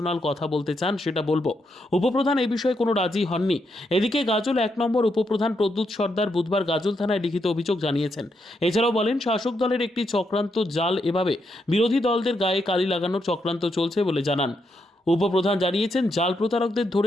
কথা বলতে চান সেটা বলবো। উপপ্রধান এই বিষয়ে কোনো রাজি হননি। এদিকে গাজল 1 নম্বর উপপ্রধান প্রদ্যুৎ সর্দার বুধবার গাজল থানায় লিখিত অভিযোগ জানিয়েছেন। এছাড়াও বলেন শাসক দলের একটি চক্রান্ত জাল, এভাবে বিরোধী দলদের গায়ে কালি লাগানোর চক্রান্ত চলছে বলে জানান। উপপ্রধান জানিয়েছেন জাল প্রতারকদের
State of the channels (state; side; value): normal; both; correlation 0.80